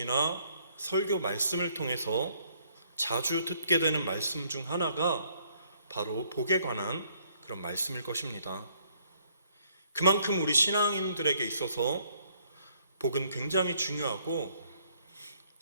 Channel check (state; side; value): inverted; both; correlation -0.66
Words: 설교 말씀을 통해서 자주 듣게 되는 말씀 중 하나가 바로 복에 관한 그런 말씀일 것입니다. 그만큼 우리 신앙인들에게 있어서 복은 굉장히 중요하고,